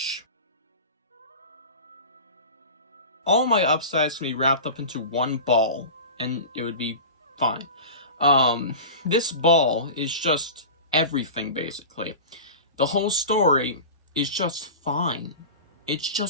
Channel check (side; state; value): both; inverted; correlation -0.32